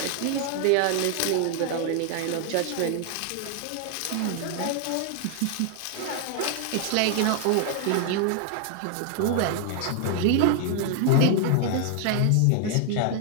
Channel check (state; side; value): different; both; correlation 0.00